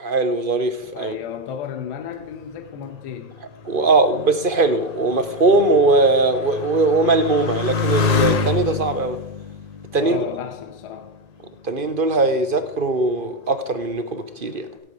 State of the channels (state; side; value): late; left; 2.5 ms